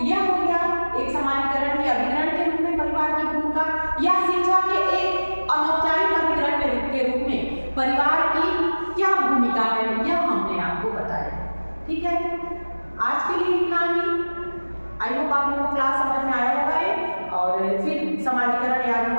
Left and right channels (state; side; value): inverted; both; correlation -1.00